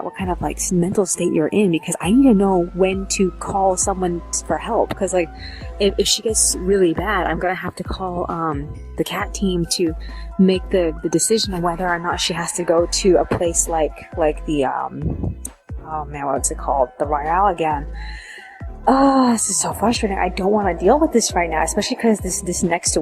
what kind of like mental state you're in, because I need to know when to call someone for help, because like if she gets really bad, I'm gonna have to call the cat team to make the decision on whether or not she has to go to a place like the oh man, what's it called, the Royale again. Oh, this is so frustrating. I don't want to deal with this right now, especially because this next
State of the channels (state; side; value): identical; both; correlation 1.00